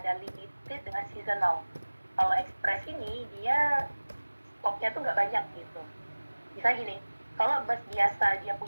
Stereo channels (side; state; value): both; inverted; correlation -1.00